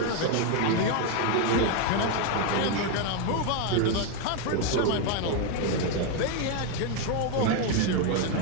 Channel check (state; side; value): different; both; correlation 0.02